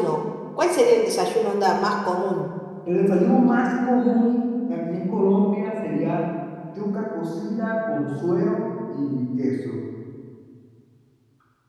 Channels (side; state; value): both; identical; correlation 1.00